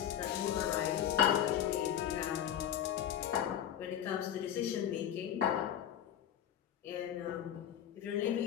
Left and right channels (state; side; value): quieter; right; 10.1 dB